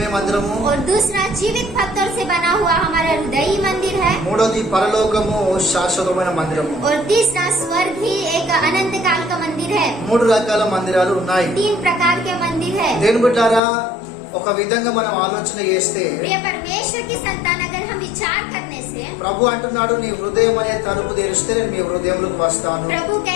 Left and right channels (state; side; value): drops out; right; at 13.6 s